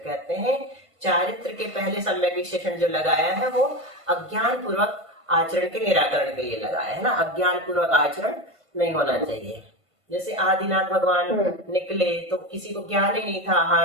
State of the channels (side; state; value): left; late; 1.5 ms